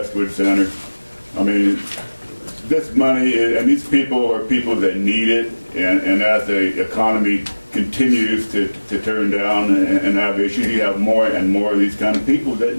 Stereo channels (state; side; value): inverted; both; correlation -1.00